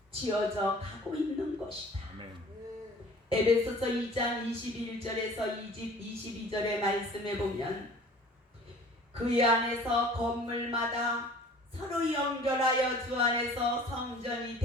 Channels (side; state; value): both; normal; correlation 0.47